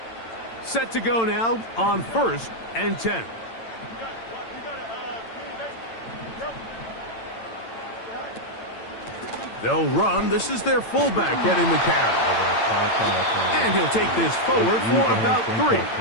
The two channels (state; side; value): late; right; 8.9 ms